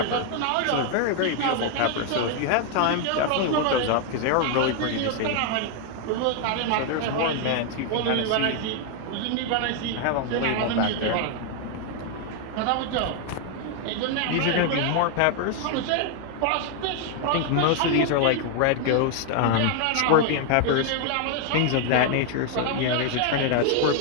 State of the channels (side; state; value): both; different; correlation 0.00